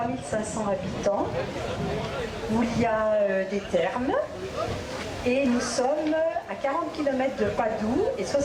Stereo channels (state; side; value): identical; both; correlation 1.00